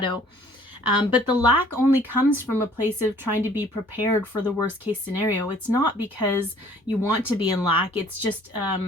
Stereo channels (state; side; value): normal; both; correlation 0.56